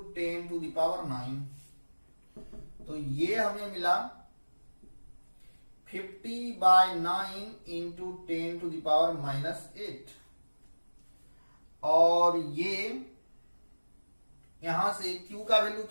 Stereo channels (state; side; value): inverted; both; correlation -1.00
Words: 10⁹। तो ये हमें मिला 50/9 इंटू 10⁻⁻8, और ये यहां से Q का वैल्यू